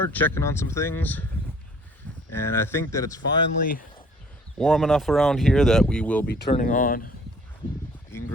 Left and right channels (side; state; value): both; normal; correlation 0.55